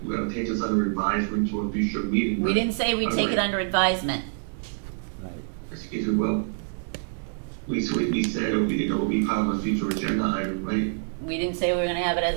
gonna take this under advisement to a future meeting. We didn't say we'd take it under advisement. Right. Excuse me, well, we said it would be part of a future agenda item, right? We didn't say we were gonna have it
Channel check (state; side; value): silent; left; digital silence